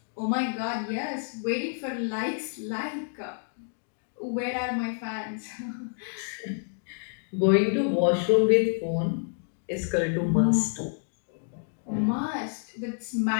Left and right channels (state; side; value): silent; right; 59 dB below the other